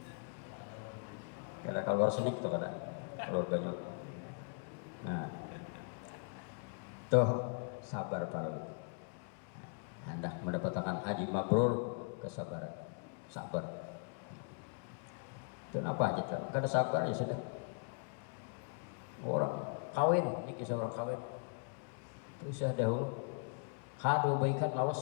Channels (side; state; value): right; quieter; 39.6 dB